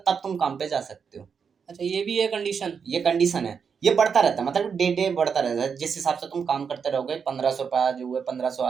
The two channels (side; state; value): left; quieter; 6.4 dB